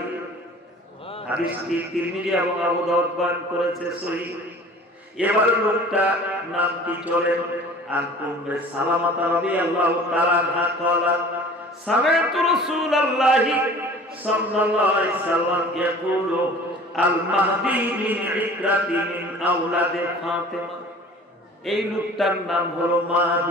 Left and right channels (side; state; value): both; normal; correlation 0.45